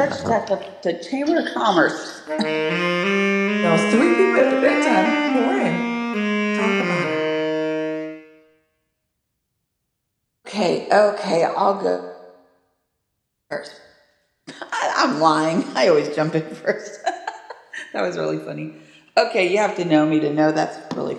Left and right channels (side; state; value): both; identical; correlation 1.00